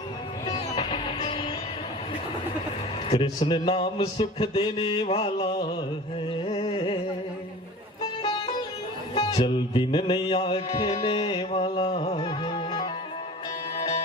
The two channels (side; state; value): both; normal; correlation 0.39